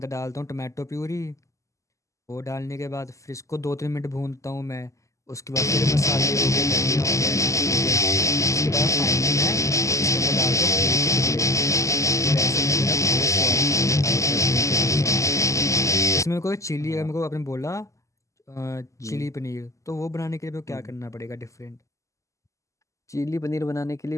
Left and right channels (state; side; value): late; right; 0.15 ms